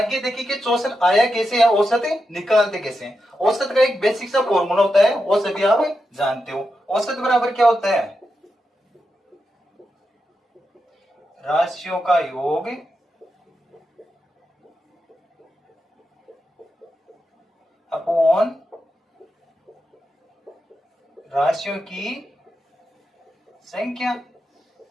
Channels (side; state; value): both; normal; correlation 0.87